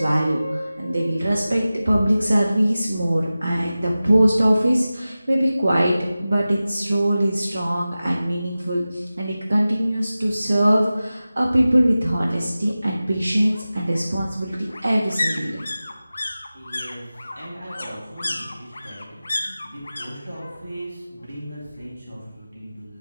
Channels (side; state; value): both; inverted; correlation -0.96